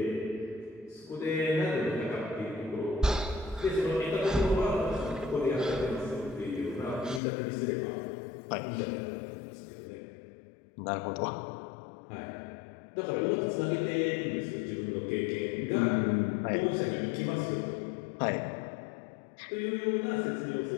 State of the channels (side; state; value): right; drops out; at 7.2 s